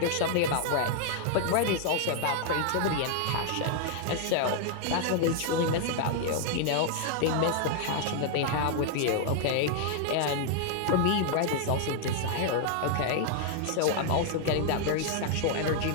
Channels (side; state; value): both; different; correlation 0.00